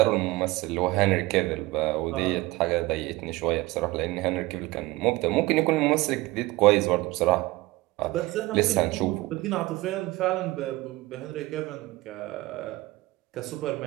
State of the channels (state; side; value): quieter; left; 20.1 dB